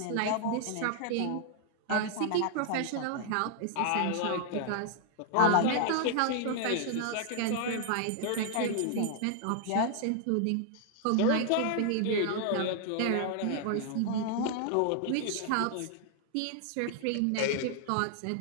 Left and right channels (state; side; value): different; both; correlation -0.01